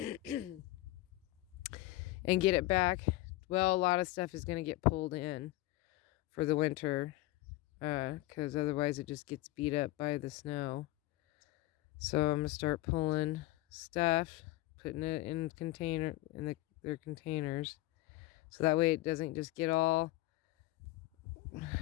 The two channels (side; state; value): right; quieter; 18.3 dB